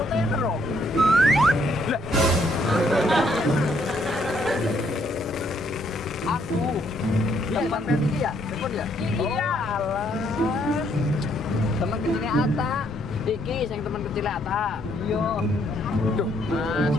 loh. Lah, Aku. Tempat ini ya? Telepon ya? iya. Alah. Teman kecilnya Ata. Iki sing teman kecilnya Ata. Iya. Duh, Mas.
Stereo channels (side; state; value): both; normal; correlation 0.70